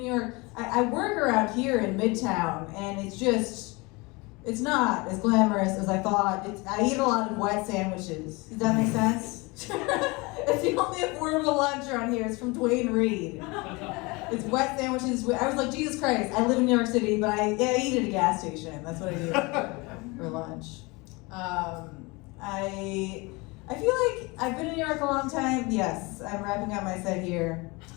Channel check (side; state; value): right; quieter; 25.7 dB